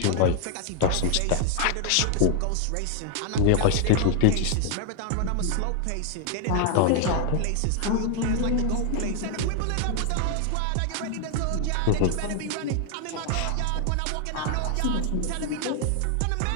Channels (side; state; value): both; different; correlation 0.00